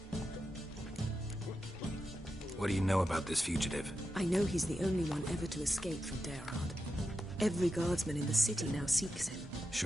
What do you know about this fugitive? I know he's the only one ever to escape from Derard. Every guardsman in the city now seeks him.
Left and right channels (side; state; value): both; normal; correlation 0.89